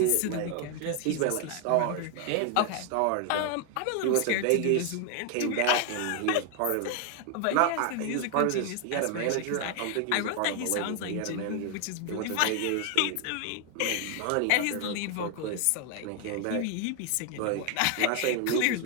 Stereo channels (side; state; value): both; different; correlation 0.00